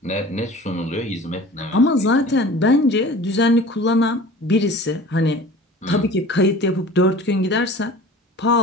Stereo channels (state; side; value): normal; both; correlation 0.41